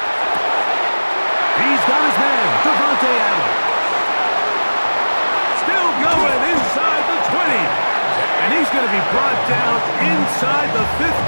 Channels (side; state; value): both; inverted; correlation -1.00